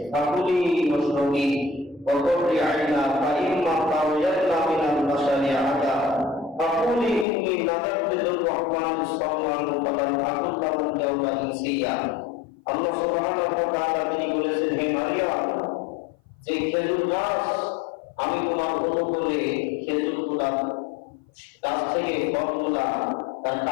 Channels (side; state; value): right; drops out; at 7.2 s